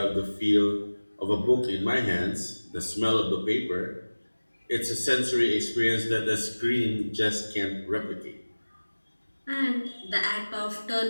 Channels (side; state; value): both; inverted; correlation -1.00